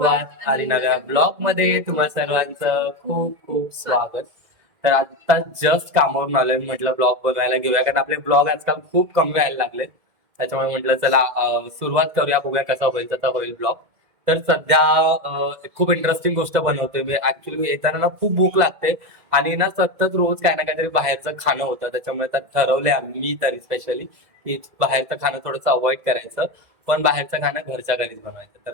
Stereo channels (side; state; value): left; late; 2.0 ms